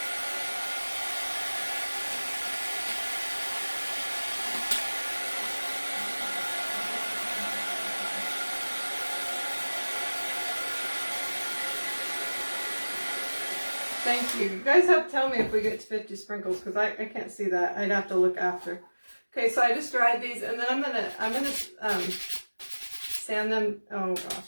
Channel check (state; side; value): inverted; both; correlation -1.00